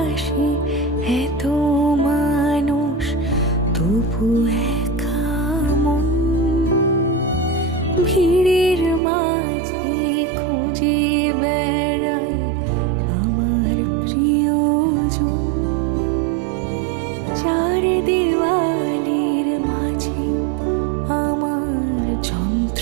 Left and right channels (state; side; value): drops out; left; at 9.0 s